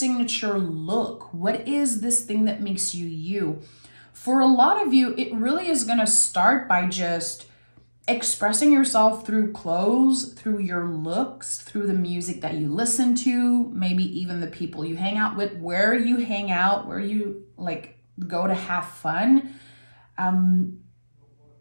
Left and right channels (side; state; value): both; inverted; correlation -1.00